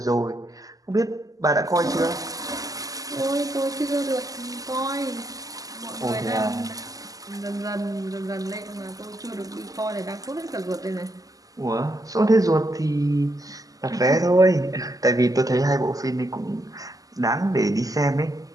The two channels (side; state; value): left; late; 0.17 ms